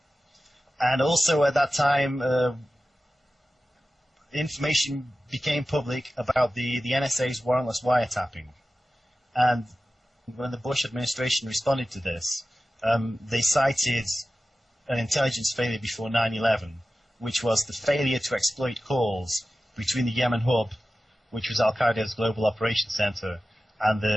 And also at that time, information became public about the NSA's warrantless wiretapping. And when the Bush administration responded to this, they cited an intelligence failure before 9/11, which was the failure to exploit calls between the Yemen hub, which was Al-Qaeda's global operations center, and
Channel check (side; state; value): both; normal; correlation 0.95